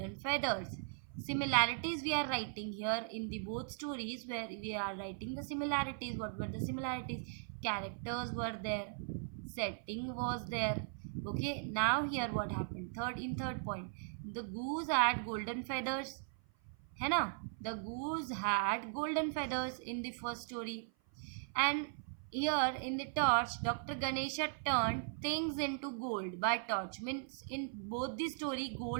feathers. Similarities we are writing here in the both stories, where we are writing the similarities. What were the similarities? Characters were there. Setting was there. Okay. Now here what happened? Third point. The goose had golden feathers. है ना? The goose had golden feathers in the first story. And here in the torch, Dr. Ganesha turned things into gold by torch. Means in both the story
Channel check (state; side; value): silent; left; 52 dB below the other